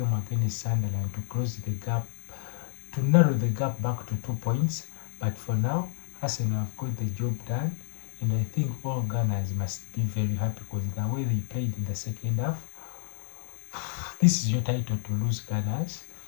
against Sunderland to close the gap, to narrow the gap back to 2 points. But for now, Arsenal have got the job done, and I think all Gunners must be very happy, because the way they played in the second half, this is your title to lose, Gunners.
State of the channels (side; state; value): right; silent; digital silence